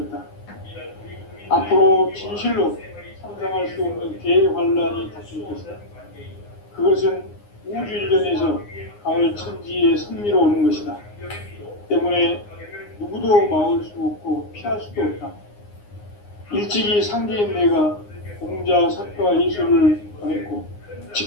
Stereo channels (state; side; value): late; right; 9.7 ms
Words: 앞으로 진실로 상상할 수 없는 대환란이 닥칠 것이다. 그것은 우주 일련에서 가을 천지의 섭리로 오는 것이다. 때문에 누구도 막을 수 없고 피할 수도 없다. 일찍이 상제인 내가 공자, 석가, 예수를 보냈고